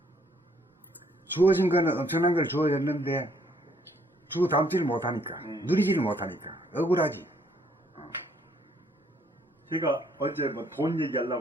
주어진 거는 엄청난 걸 주어졌는데 주워 담지를 못하니까 누리지를 못하니까 억울하지. 제가 어제 뭐 돈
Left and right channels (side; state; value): both; normal; correlation 0.67